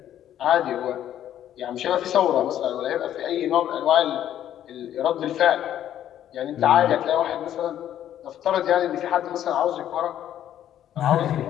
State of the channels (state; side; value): quieter; right; 11.2 dB